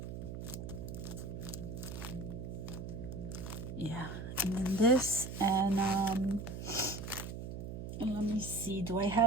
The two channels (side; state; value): right; noise; hum, 7 dB below the sound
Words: Yeah, and then this, and let me see, do I